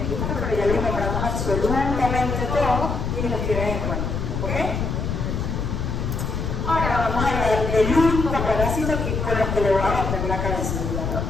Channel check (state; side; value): noise; left; rumble, 2 dB below the sound